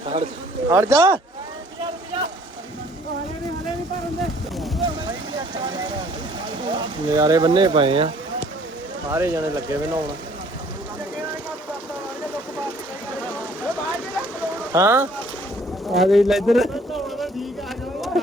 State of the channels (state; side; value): normal; both; correlation 0.58